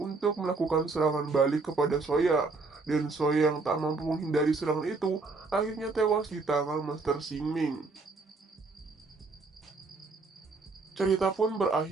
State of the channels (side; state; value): left; quieter; 3.9 dB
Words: melakukan serangan balik kepada Soya. Dan Soya yang tak mampu menghindari serangan itu akhirnya tewas di tangan Master Xing Ming. Cerita pun